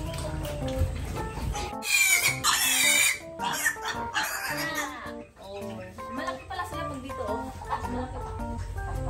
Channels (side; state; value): both; identical; correlation 1.00